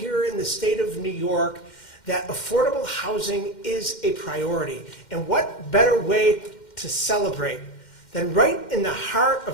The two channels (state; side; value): late; right; 2.1 ms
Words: in the state of New York that affordable housing is a priority. And what better way to celebrate than right in the heart